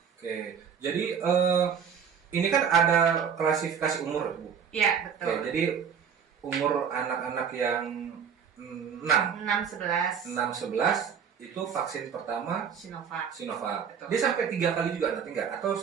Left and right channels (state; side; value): quieter; left; 7.2 dB